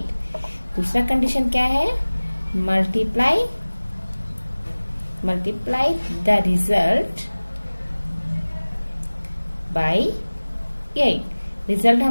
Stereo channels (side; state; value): both; inverted; correlation -1.00